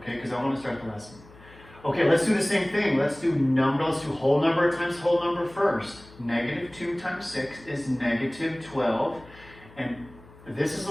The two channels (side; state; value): left; noise; hum, 22 dB below the sound